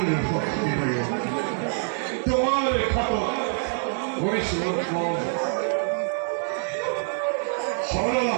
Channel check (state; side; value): silent; left; 61 dB below the other